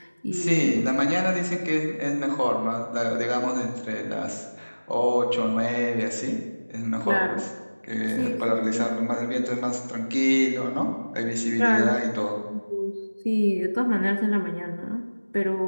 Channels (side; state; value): both; inverted; correlation -1.00